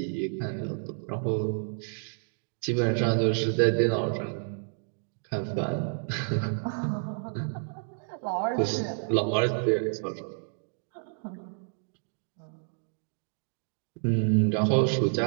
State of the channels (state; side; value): silent; left; digital silence